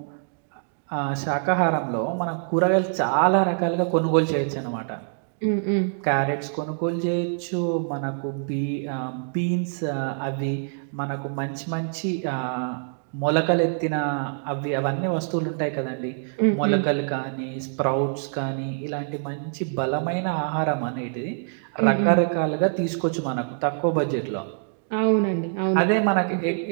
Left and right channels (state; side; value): silent; left; digital silence